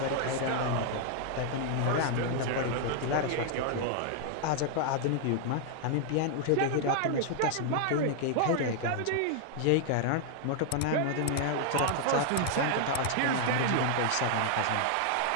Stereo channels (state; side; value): different; both; correlation 0.00